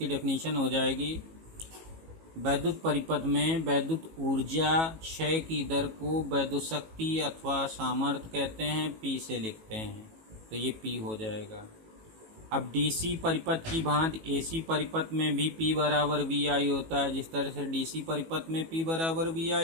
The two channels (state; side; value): late; left; 18 ms